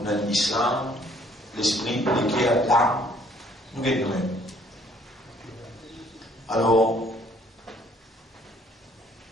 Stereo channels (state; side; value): normal; both; correlation 0.61